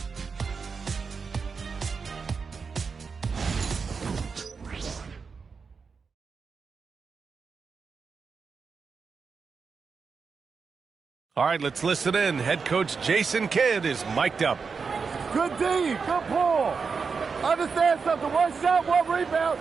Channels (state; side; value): quieter; left; 5.3 dB